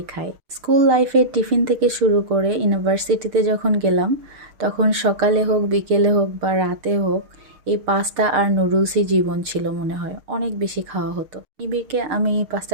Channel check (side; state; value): left; late; 6.7 ms